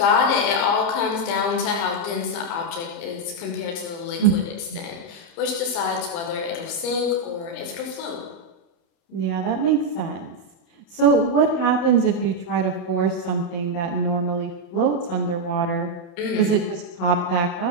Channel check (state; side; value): late; right; 30 ms